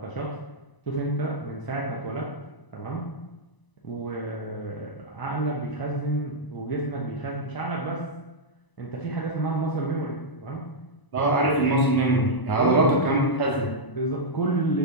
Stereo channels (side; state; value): right; late; 1.0 ms